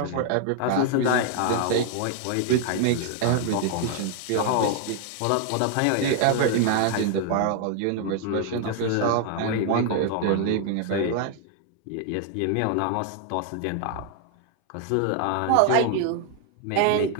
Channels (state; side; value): different; both; correlation 0.00